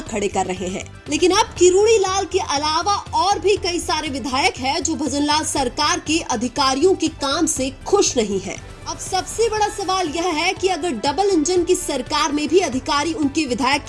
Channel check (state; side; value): identical; both; correlation 1.00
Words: खड़े कर रहे हैं, लेकिन अब किरोड़ी लाल के अलावा और भी कई सारे विधायक हैं जो भजनलाल सरकार के अधिकारियों के काम से खुश नहीं है। अब सबसे बड़ा सवाल यह है कि अगर डबल इंजन की सरकार में भी अधिकारी उनके विधायक